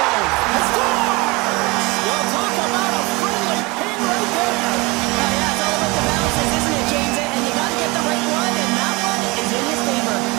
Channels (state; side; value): quieter; left; 25.1 dB